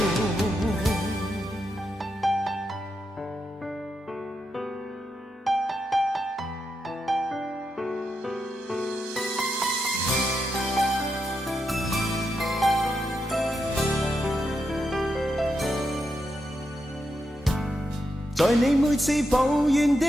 在你每次抱怨的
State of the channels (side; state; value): both; normal; correlation 0.85